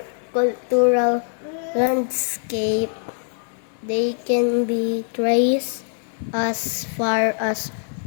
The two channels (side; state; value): right; silent; 59 dB below the other